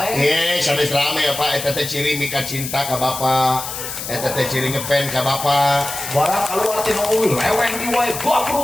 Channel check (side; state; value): left; noise; hiss, 7 dB below the sound